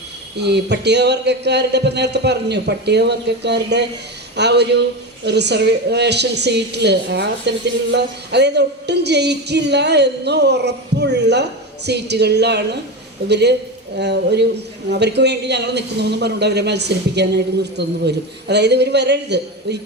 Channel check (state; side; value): normal; both; correlation 0.20